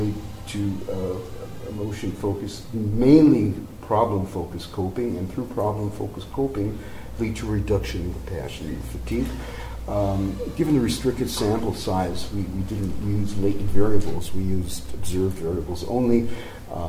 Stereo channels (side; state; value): both; identical; correlation 1.00